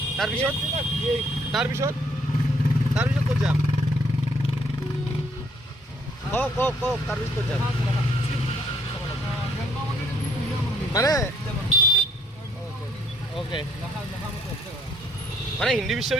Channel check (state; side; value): normal; both; correlation 0.67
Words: তাৰপিছত ক'ত যাম কওক তাৰপিছত ক'ত যাম মানে অ'কে মানে হিন্দী